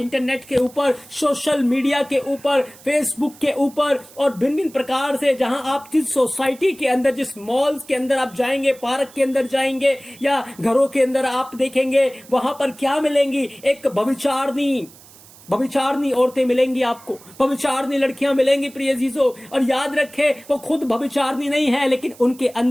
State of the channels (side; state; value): right; noise; hiss, 23 dB below the sound